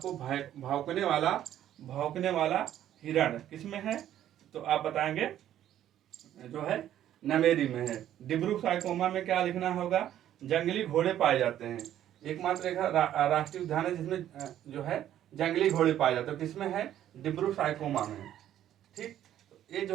भौंकने वाला हिरण किसमें है? तो आप बताएंगे जो है नमेरी में है। डिब्रू साइकोमा में क्या लिखना होगा? जंगली घोड़े पाए जाते हैं, एकमात्र एक राष्ट्रीय उद्यान है जिसमें जो है जंगली घोड़े पाए जाते हैं, किसमें है? डिब्रू साइकोमा में, ठीक। तो ये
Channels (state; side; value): quieter; left; 11.6 dB